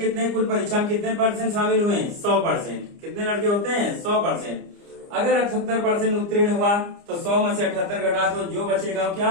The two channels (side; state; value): left; late; 29 ms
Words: कुल परीक्षा में कितने परसेंट शामिल हुए, 100%। कितने लड़के होते हैं, 100%। अगर 78% उत्तीर्ण हुआ तो 100 में से 78 घटा तो जो बचेगा वो क्या